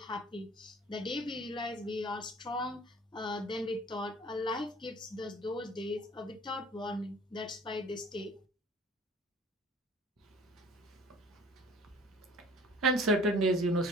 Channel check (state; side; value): normal; both; correlation 0.50